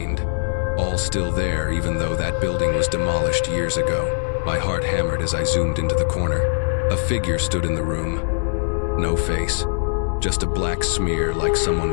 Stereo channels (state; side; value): silent; right; digital silence